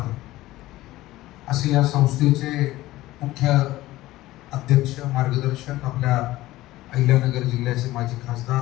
असे या संस्थेचे मुख्य अध्यक्ष मार्गदर्शक आपल्या अहिल्यानगर जिल्ह्याचे माजी खासदार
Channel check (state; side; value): quieter; right; 16.9 dB